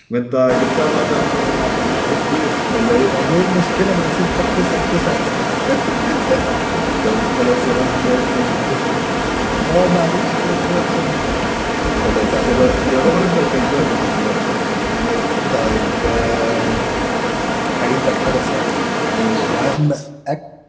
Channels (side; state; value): both; identical; correlation 1.00